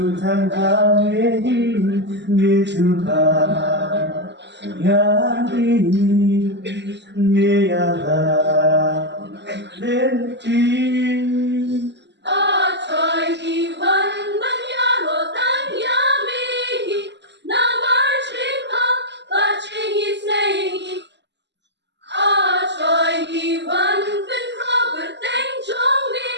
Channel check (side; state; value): left; late; 0.51 ms